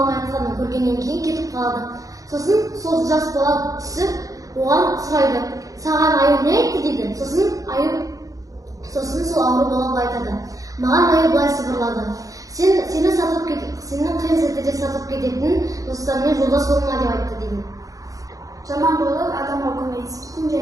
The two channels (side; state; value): left; late; 0.17 ms